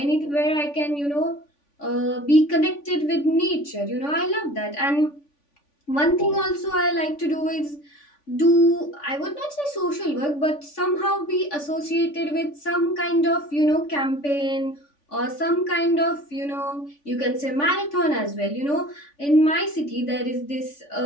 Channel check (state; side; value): late; right; 3.5 ms